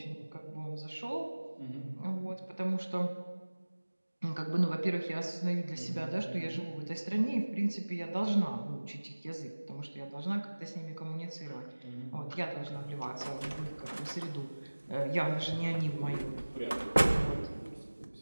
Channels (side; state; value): both; inverted; correlation -1.00